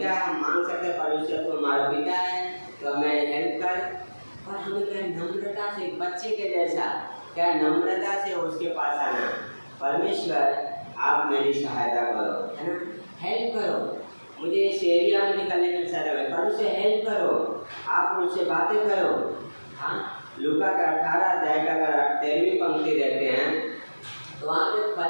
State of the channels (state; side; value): inverted; both; correlation -1.00